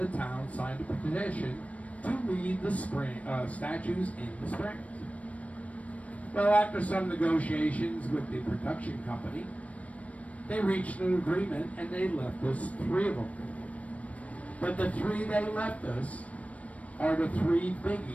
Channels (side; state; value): right; late; 0.066 ms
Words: town signed a petition to leave the statues in the springs. Well, after some negotiations with the production company, they reached an agreement and they left us 3 of them. But the 3 they left us are the 3